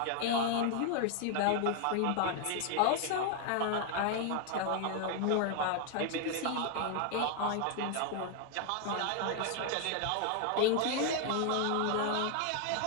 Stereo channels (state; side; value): different; both; correlation 0.00